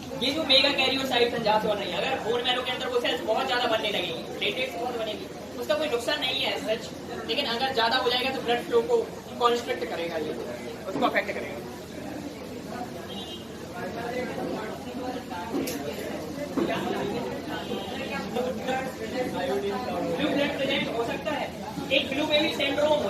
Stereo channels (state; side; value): noise; right; hum, 30 dB below the sound